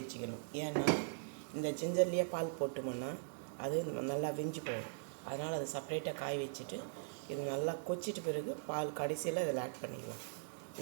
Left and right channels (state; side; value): silent; left; digital silence